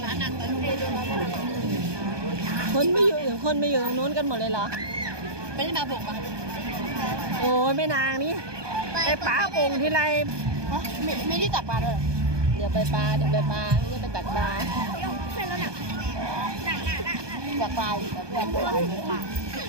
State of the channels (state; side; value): late; left; 1.2 ms